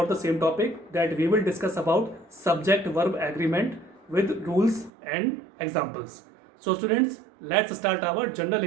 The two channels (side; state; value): left; drops out; at 4.9 s